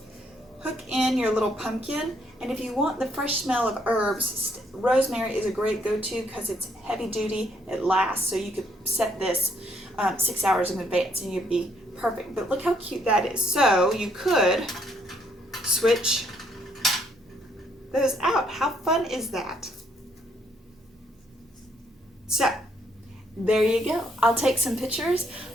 Hook in your little pumpkin, and if you want the fresh smell of herbs, rosemary is a great go-to because it's heavy duty, it lasts, so you could set this 6 hours in advance and you'd be perfect. But look how cute that is. So you could switch those out. How fun is that? So there you go. I'll take some pictures.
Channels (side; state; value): both; normal; correlation 0.70